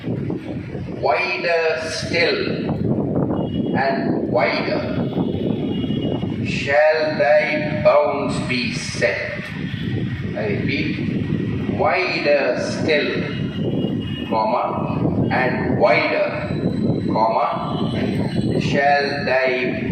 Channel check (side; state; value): both; identical; correlation 1.00